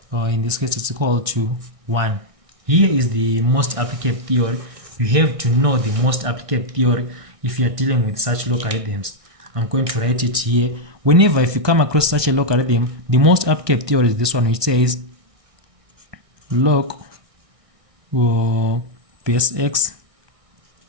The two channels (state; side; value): late; left; 1.6 ms